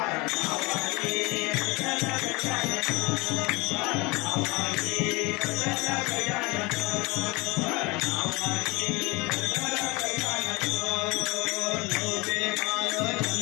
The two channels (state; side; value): quieter; right; 24.9 dB